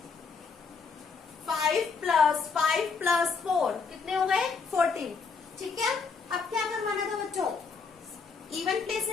5 प्लस 5 प्लस 4 कितने हो गए 14। ठीक है, अब क्या करवाना था बच्चों, इवन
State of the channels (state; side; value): quieter; right; 5.1 dB